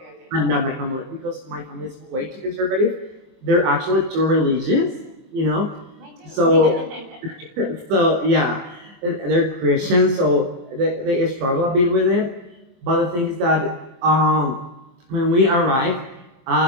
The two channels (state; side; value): late; left; 23 ms